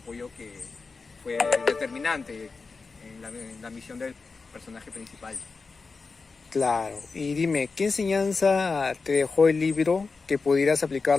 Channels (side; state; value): right; quieter; 4.4 dB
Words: que fue determinante en la misión del personaje principal. Claro. Y dime, ¿qué enseñanza te dejó el libro que pudieras